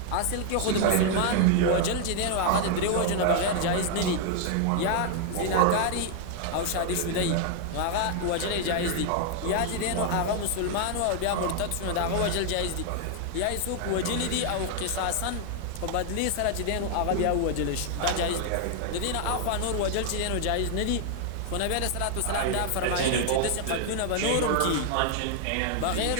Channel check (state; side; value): different; both; correlation 0.00